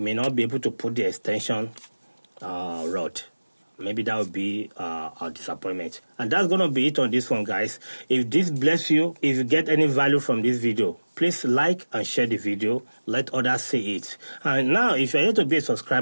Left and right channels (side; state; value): both; inverted; correlation -1.00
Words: may not be able to put the extension rod. Maybe that would be a disappointment. And that's going to be it on this one, guys. If this bless you, if you get any value from this video, please like and share the video. Let others see it. And now, if you're here to be a